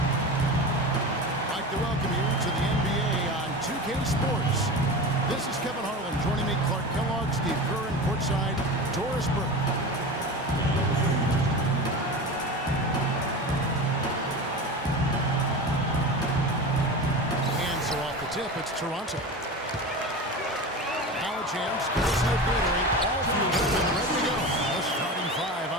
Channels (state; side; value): normal; both; correlation 0.28